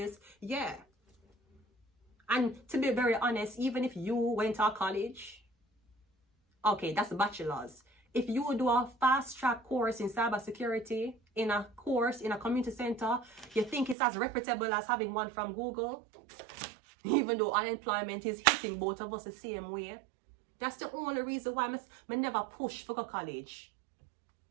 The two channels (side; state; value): left; drops out; at 14.0 s